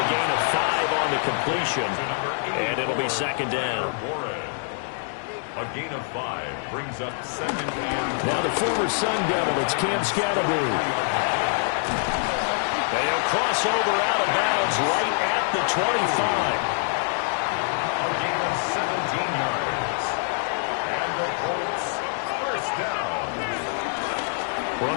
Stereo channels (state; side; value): silent; right; 62 dB below the other